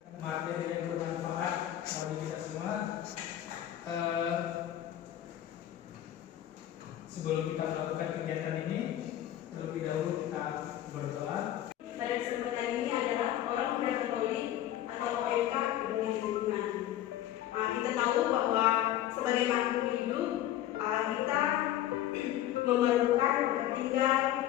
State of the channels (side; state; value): right; quieter; 12.6 dB